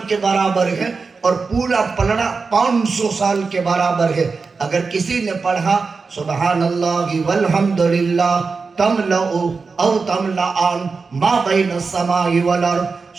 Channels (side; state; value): left; quieter; 4.6 dB